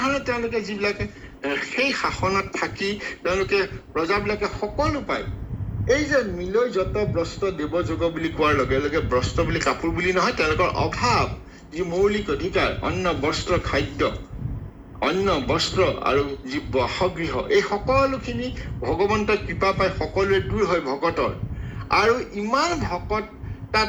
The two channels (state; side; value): identical; both; correlation 1.00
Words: তেওঁলোকে যিবিলাকে সেই শাসনত থাকি তেওঁলোকে প্ৰজাবিলাকে সকলো পায়। এই যে মিলৈ যত বস্ত্ৰ দেৱ যোগ বুলি কোৱাৰ লগে লগে বস্ত্ৰ বুলি কাপোৰ বুলি নহয়, তেওঁলোকৰ অভাৱ যি মৌলিক অধিকাৰ, অন্ন বস্ত্ৰ খাদ্য, অন্ন বস্ত্ৰ আৰু যি বাসগৃহ, এই সকলোখিনি ভগৱন্তৰ কৃপা পাই সকলোৱে দূৰ হয় ভকতৰ। আৰু ইমান ভকত